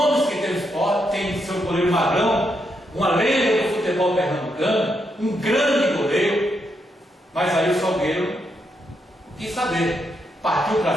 que tem o Sport, tem seu goleiro Magrão, uma lenda do futebol pernambucano, um grande goleiro, mas aí o Salgueiro quis saber, partiu para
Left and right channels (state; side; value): normal; both; correlation 0.80